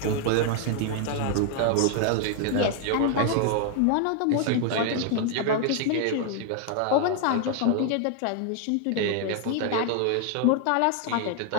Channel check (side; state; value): both; different; correlation 0.00